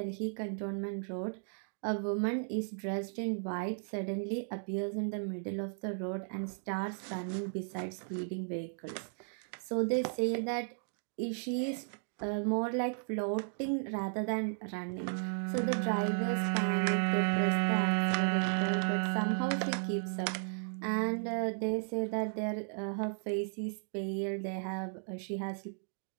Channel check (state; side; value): silent; left; digital silence